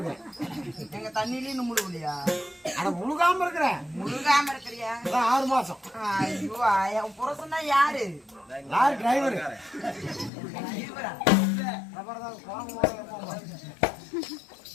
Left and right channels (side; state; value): right; drops out; at 10.3 s